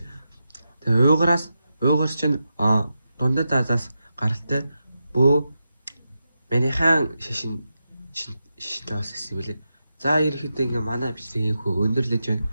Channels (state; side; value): inverted; both; correlation -0.88